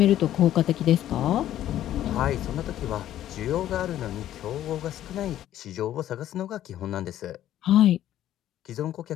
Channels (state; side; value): quieter; right; 12.3 dB